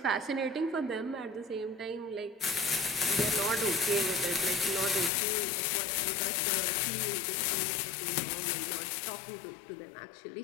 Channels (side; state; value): right; drops out; at 5.1 s